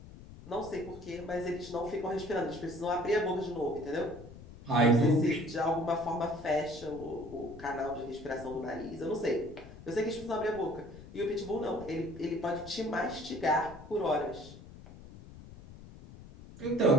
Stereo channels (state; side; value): noise; left; rumble, 16 dB below the sound